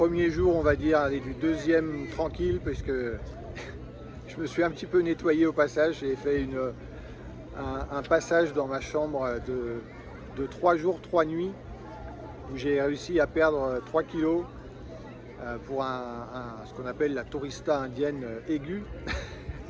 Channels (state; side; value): identical; both; correlation 1.00